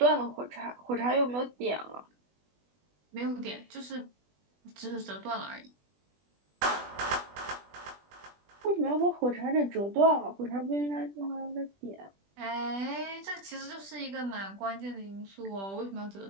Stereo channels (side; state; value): left; late; 20 ms